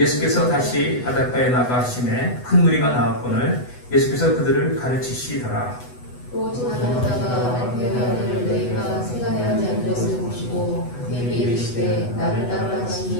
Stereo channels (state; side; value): late; right; 8.1 ms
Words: 다시 바닷가에 나가심에 큰 무리가 나왔거늘 예수께서 그들을 가르치시더라. 또 지나가다가 알페오를 너희가 세간에 하지 않은 것을 보시고 그에게 이르시되 나를 따르라